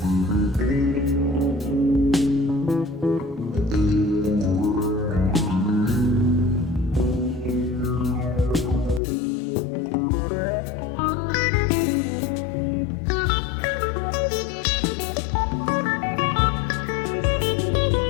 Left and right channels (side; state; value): right; drops out; at 9.0 s